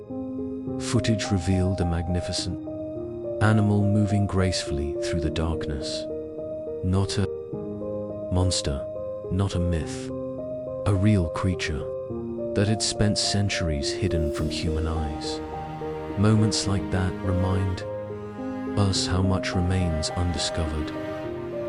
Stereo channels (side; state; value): both; identical; correlation 1.00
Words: footage revealed a magnificent animal moving gracefully through the darkness. Not a monster, not a myth, a real creature that had spent centuries hidden from human eyes. Moments like that remind us how much remains undiscovered,